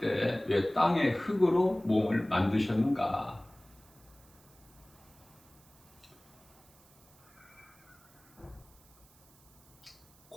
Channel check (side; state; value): right; noise; hiss, 28 dB below the sound